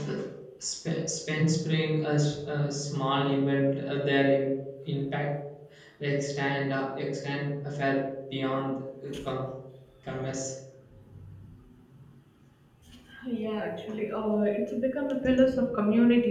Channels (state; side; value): identical; both; correlation 1.00